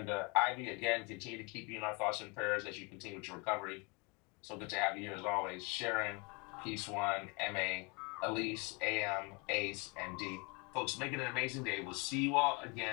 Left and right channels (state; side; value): quieter; right; 30.0 dB